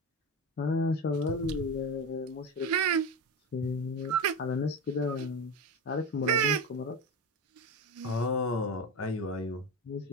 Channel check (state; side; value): normal; both; correlation 0.20